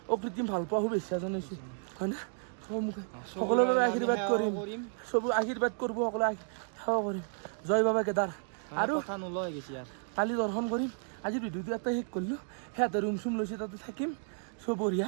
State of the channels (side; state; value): left; silent; 56 dB below the other